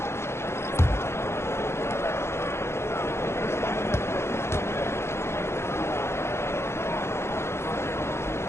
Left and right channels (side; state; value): right; late; 0.13 ms